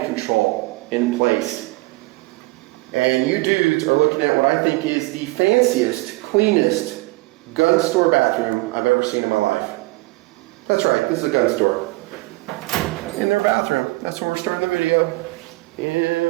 control in place. And you dudes are looking at what I think is the fanciest, cleanest gun store bathroom I've ever seen in my life. That's right, this is a gun store. In their bathroom. That's where we're starting the video.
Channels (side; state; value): left; quieter; 23.4 dB